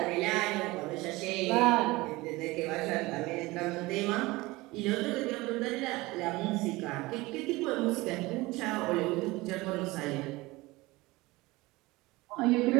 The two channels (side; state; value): left; quieter; 21.1 dB